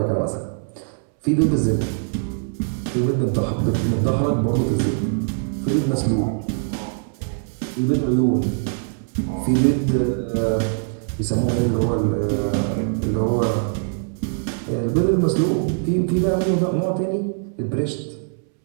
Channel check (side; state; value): left; silent; 64 dB below the other